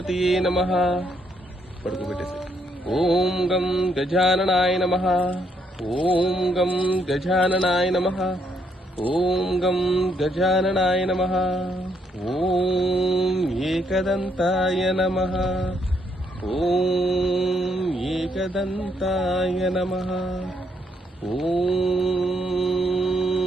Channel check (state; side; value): normal; both; correlation 0.73